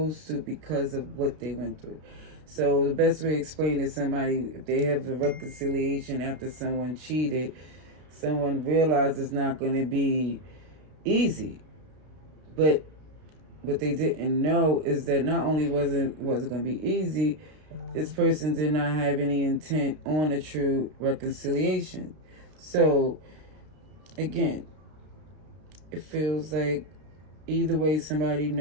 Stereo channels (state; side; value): late; left; 32 ms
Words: to because of what they went through. So the best way to explain to somebody, if they have a reconciliation after someone cheated, someone realized it's not going to be easy. But what they didn't know is that not only wasn't going to be easy, this person did not have any intent on a true reconciliation. So, again, it feels like either way somebody